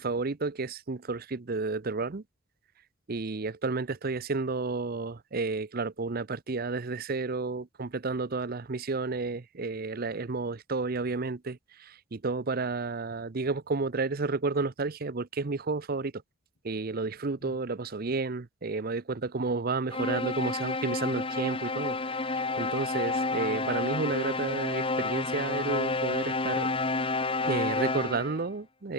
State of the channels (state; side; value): normal; both; correlation 0.11